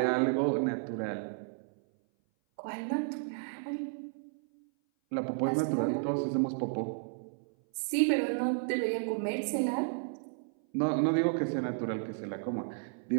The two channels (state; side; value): silent; left; 56 dB below the other